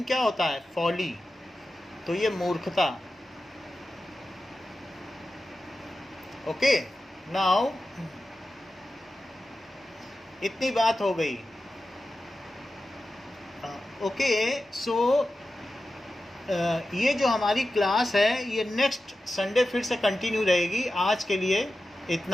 क्या होता है, फॉली, तो ये मूर्खता. ओके, नाउ इतनी बात हो गई. ओके, सो ये जो हमारी क्लास है ये नेक्स्ट संडे फिर से कंटिन्यू रहेगी. आज के लिए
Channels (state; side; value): normal; both; correlation 0.93